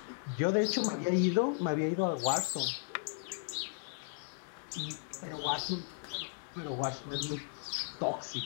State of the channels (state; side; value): silent; right; digital silence